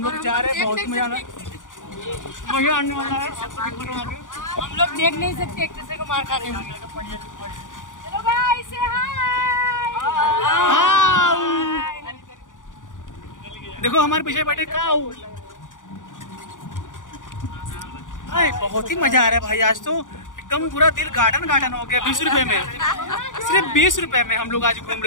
लोग जा रहे हैं, बहुत मजा आने वाला है। हम लोग देख नहीं सकते एक दूसरे को मार खाने में। चलो गाइस से हाय। देखो हमारे पीछे बैठे काऊ। भाई बहुत ही मजा आ रहा है भाई, आज तो एकदम पूरा दिल गार्डन गार्डन हो गया। 20 रुपए में, सिर्फ 20 रुपए में हम लोग आज घूम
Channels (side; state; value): right; late; 0.88 ms